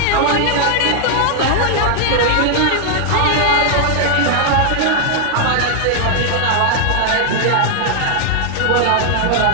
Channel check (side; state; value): both; different; correlation 0.00